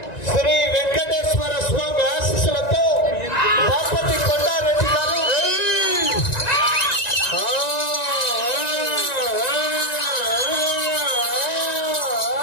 శ్రీ వెంకటేశ్వర స్వామి ఆశీస్సులతో బాపతి కొండారెడ్డి గారు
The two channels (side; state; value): right; late; 1.9 ms